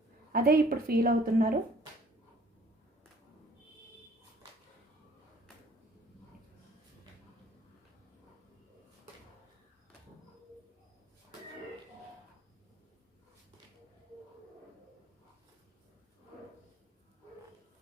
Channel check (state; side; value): normal; both; correlation 0.57